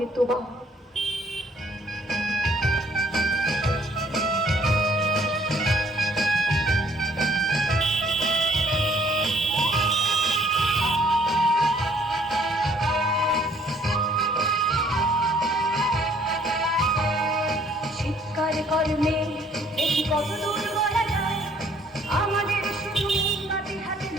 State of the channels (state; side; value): normal; both; correlation 0.62